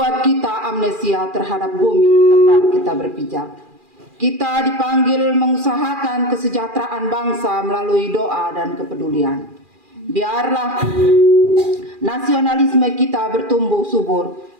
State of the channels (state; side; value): late; left; 2.4 ms